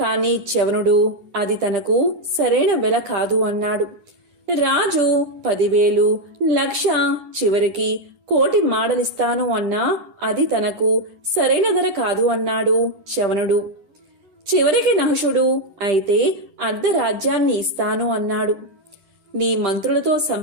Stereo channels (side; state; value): left; late; 10 ms